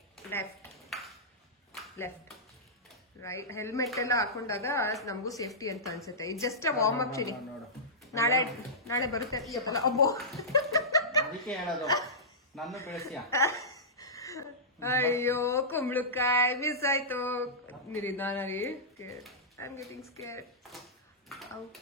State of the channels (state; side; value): normal; both; correlation -0.15